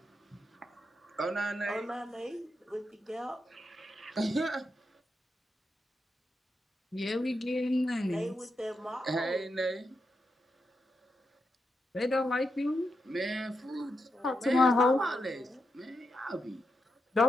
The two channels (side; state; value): both; normal; correlation 0.85